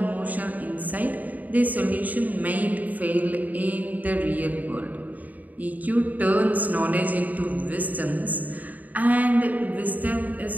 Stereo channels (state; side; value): late; left; 0.078 ms